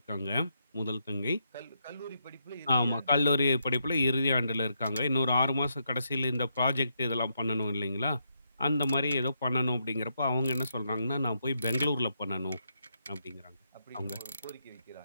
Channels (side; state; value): both; inverted; correlation -0.79